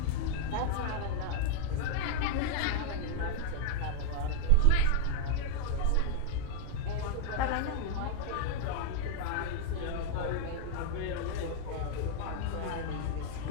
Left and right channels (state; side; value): different; both; correlation 0.00